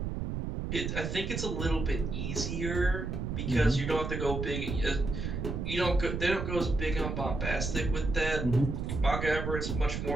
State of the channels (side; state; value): right; noise; rumble, 3 dB below the sound